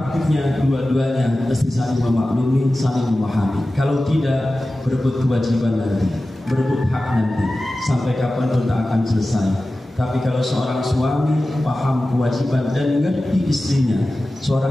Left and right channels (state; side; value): normal; both; correlation 0.95